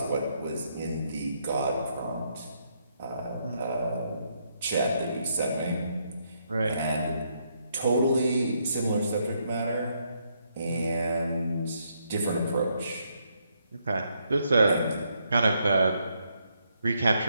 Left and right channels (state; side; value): inverted; both; correlation -0.76